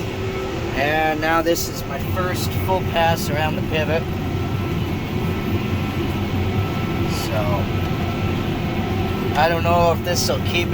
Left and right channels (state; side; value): identical; both; correlation 1.00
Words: And now this is my first full pass around the pivot. So, I don't know if this will keep